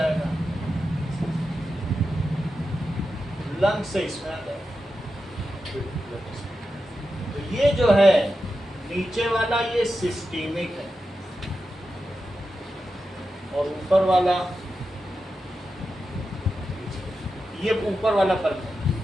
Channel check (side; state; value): both; normal; correlation 0.90